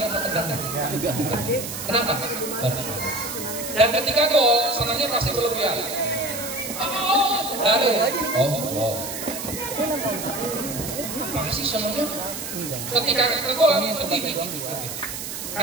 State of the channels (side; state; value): right; noise; hiss, 7 dB below the sound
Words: atau tegangnya? Kenapa? Dan ketika gol, senangnya masih berlebihan. Masih senangnya. Ketika gol sedih.